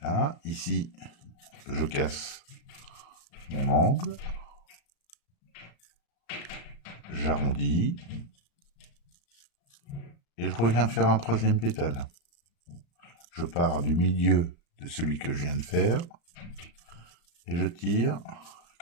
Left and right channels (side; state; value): right; late; 35 ms